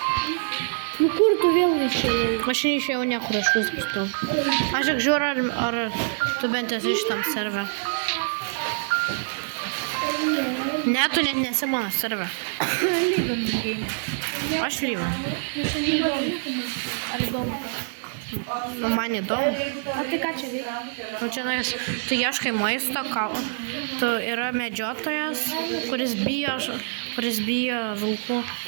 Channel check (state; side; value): silent; left; digital silence